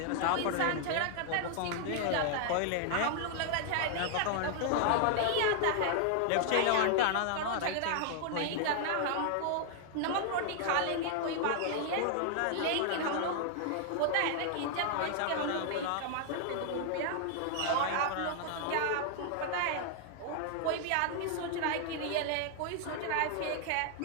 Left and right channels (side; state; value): both; different; correlation 0.00